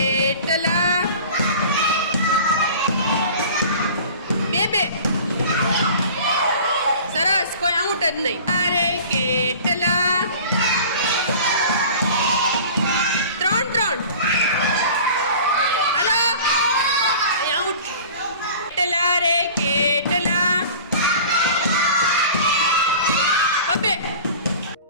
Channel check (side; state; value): both; inverted; correlation -0.42